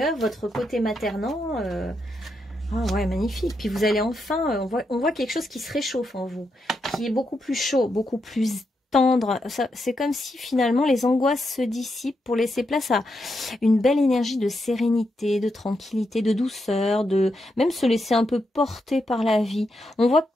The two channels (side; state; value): both; normal; correlation 0.83